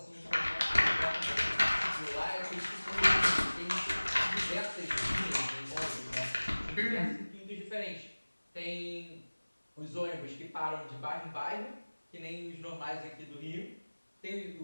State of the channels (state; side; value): inverted; both; correlation -1.00